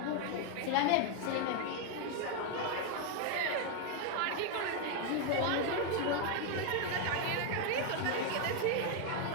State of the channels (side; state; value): both; different; correlation 0.01